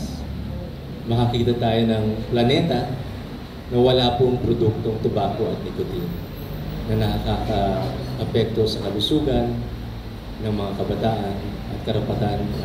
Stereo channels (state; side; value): identical; both; correlation 1.00